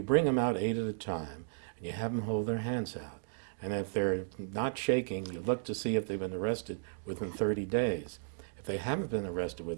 bring them out 8 at a time, and you have them hold their hands out. And if they're not shaking, you look to see if they've been arrested within 30 days. If they haven't been arrested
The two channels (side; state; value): left; silent; digital silence